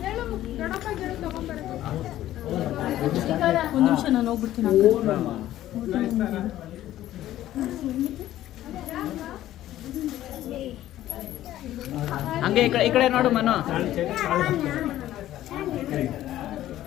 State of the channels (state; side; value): quieter; right; 13.6 dB